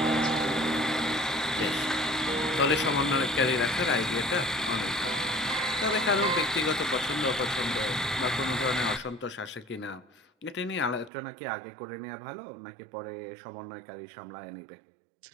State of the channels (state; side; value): drops out; left; at 11.1 s